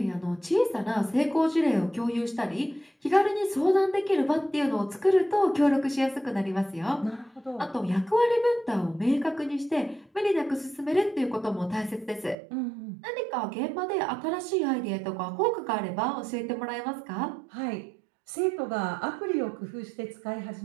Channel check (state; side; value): drops out; left; at 12.4 s